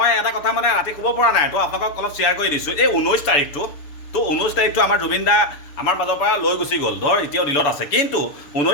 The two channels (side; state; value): right; late; 6.9 ms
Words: এটা কথা মানে ৰাতি ক'ব পৰা নাই তো আপোনালোকক অলপ শ্বেয়াৰ কৰি দিছোঁ এই 19 তাৰিখটো তো 19 তাৰিখটো আমাৰ জুবিন দা আমাৰ মাজৰ পৰা লৈ গুচি গ'ল ধৰ এতিয়াও দিলত আছে কিন্তু